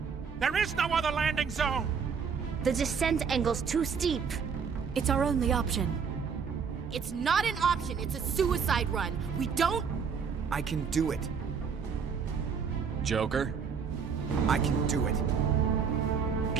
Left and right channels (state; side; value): quieter; left; 6.2 dB